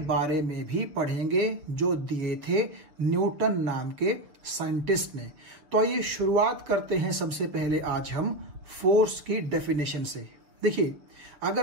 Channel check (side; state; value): left; late; 6.8 ms